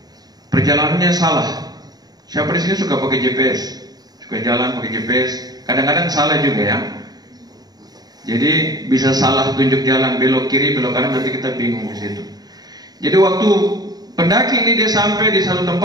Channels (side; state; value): left; late; 0.19 ms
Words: Perjalanannya salah. Siapa di sini suka pakai GPS? Suka jalan pakai GPS? Kadang-kadang salah juga ya. Jadi bisa salah tunjuk jalan, belok kiri, belok kanan, nanti kita bingung di situ. Jadi waktu pendaki ini dia sampai di satu